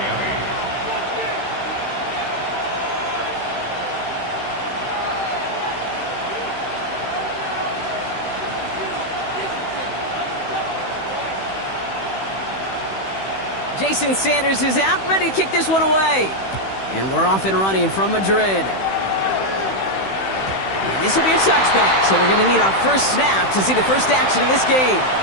Jason Sanders is out, ready to kick this one away. And we're off and running from Madrid. And this will be a touchback, so we're going to need our first snap to see the first action of this game.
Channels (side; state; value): right; late; 16 ms